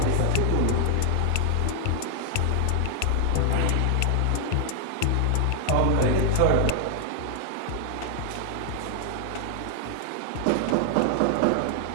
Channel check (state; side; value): different; both; correlation 0.00